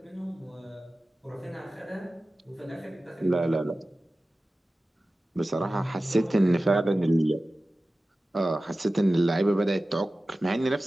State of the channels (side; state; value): both; normal; correlation 0.96